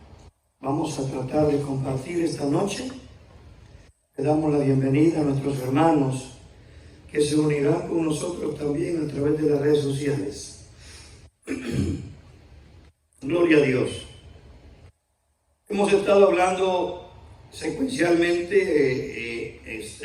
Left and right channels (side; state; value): both; identical; correlation 1.00